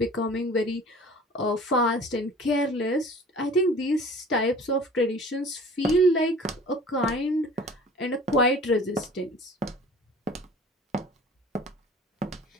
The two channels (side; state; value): both; normal; correlation 0.45